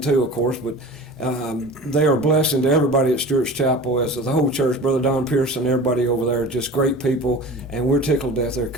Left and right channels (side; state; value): both; normal; correlation 0.37